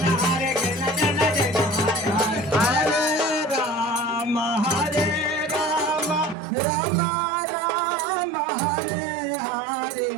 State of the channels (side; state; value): left; drops out; at 6.4 s